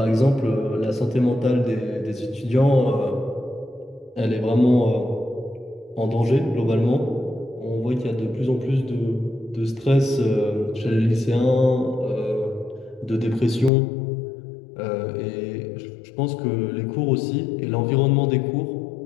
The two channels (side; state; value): right; drops out; at 13.7 s